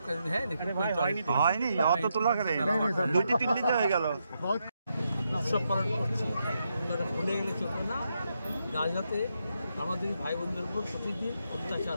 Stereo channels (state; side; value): inverted; both; correlation -0.82